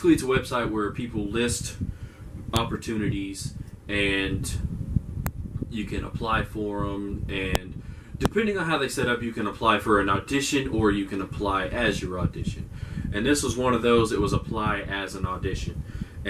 it's a website where people list opportunities, and you can apply for them. And depending on how they set up, you can apply for an audition, or you can apply as your audition. And this was one of those. It was apply as an audition.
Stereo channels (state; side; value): identical; both; correlation 1.00